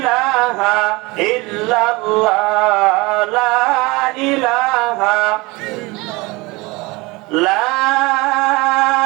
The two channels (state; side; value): quieter; left; 23.8 dB